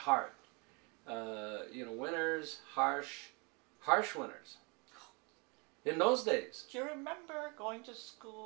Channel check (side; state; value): left; quieter; 31.2 dB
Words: Winters, harsh winters. In those days. Do you remember going to